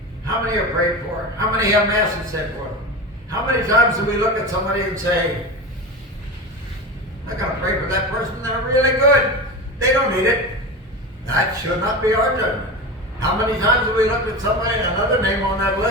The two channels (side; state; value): both; normal; correlation 0.26